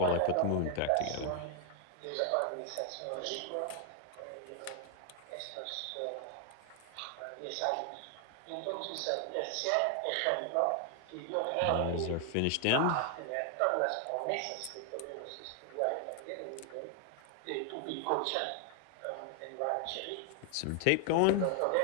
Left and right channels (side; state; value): both; different; correlation 0.00